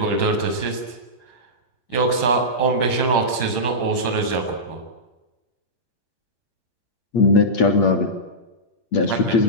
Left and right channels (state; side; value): late; right; 8.2 ms